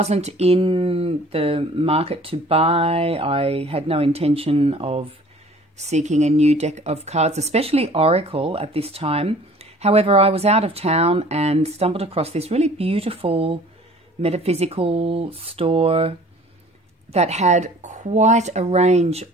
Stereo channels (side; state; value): both; normal; correlation 0.50